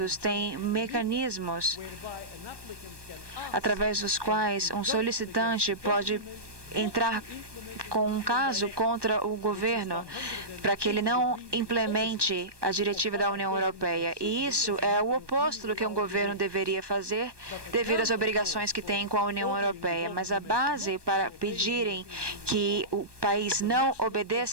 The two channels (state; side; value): late; left; 1.2 ms